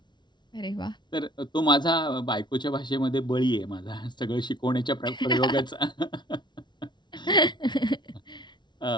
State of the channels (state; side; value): late; right; 0.22 ms